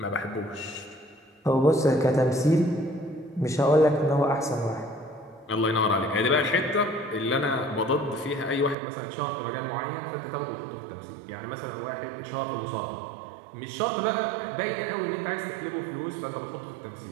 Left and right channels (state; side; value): drops out; left; at 8.8 s